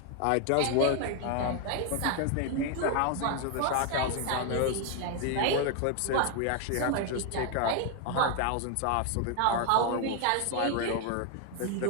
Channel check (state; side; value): different; both; correlation 0.01